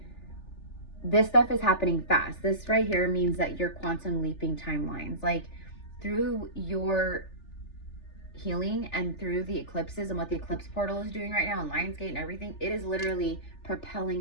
this stuff is happening fast. This right here means that you're quantum leaping timelines. Like, through your healing and through the eclipses and what the eclipse portal is doing right now and Lionsgate and everything, it is literally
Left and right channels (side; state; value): right; late; 3.4 ms